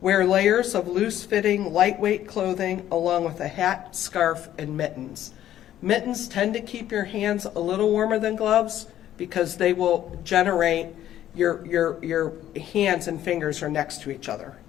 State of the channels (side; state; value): right; quieter; 12.0 dB